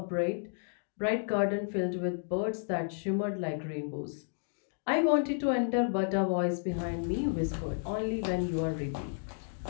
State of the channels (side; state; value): right; silent; digital silence